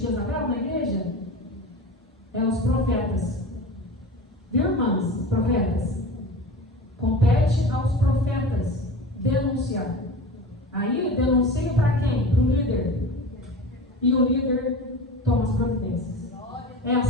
na igreja? É os profetas. Viu, irmãs? Profetas. Compete aos profetas denunciar. Aí denuncia para quem? Para o líder. E o líder toma as providências. É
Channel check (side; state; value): both; normal; correlation 0.33